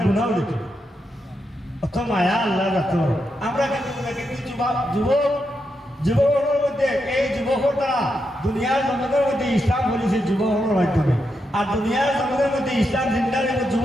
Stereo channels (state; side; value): normal; both; correlation 0.84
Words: গুণাও দিত অত মায়া আল্লাহ যাত আমরা কিন্তু যুবকের মধ্যে এই যুবকের দ্বারা দুনিয়ার জগতের মধ্যে ইসলাম বলেছে যুবকের মাধ্যমে আর দুনিয়ার জগতের মধ্যে ইসলাম জিন্দার